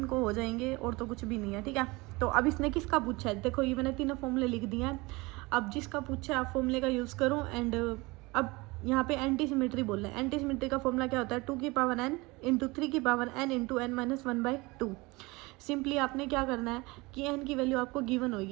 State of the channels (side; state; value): left; quieter; 23.7 dB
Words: हो जाएंगे, और तो कुछ भी नहीं है, ठीक है। तो अब इसने किसका पूछा है, देखो ये मैंने 3 फॉर्मूले लिख दिए हैं। अब जिसका पूछा है आप फॉर्मूले का यूज़ करो। एंड अब यहाँ पे एंटी सिमेट्री बोल रहे हैं। एंटी सिमेट्री का फॉर्मूला क्या होता है 2 की पावर n इंटू 3 की power n into n minus 1/2। Simply आपने क्या करना है कि n की वैल्यू आपको गिवन